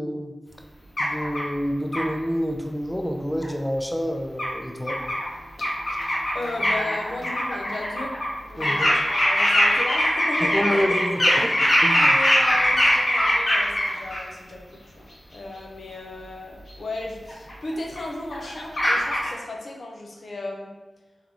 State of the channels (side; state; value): both; normal; correlation 0.95